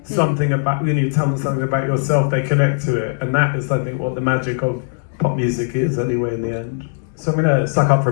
something about, when you tell them something about yourself, they connect to it. And that is, I think, what the magic of pop music is anyway in the end. So I'm going to suck up for a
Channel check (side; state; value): right; silent; 67 dB below the other